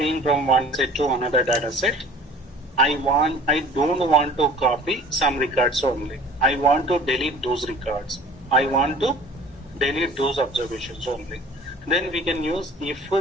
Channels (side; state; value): both; normal; correlation 0.46